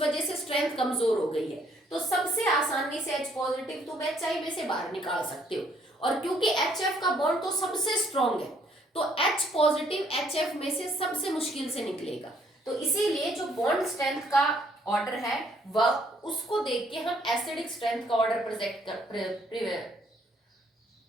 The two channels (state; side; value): normal; both; correlation 0.66